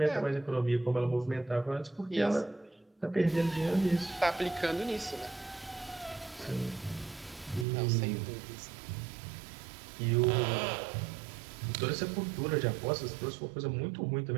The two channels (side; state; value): left; drops out; at 7.7 s